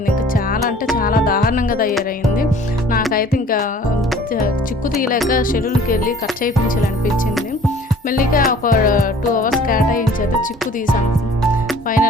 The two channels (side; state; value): both; normal; correlation 0.50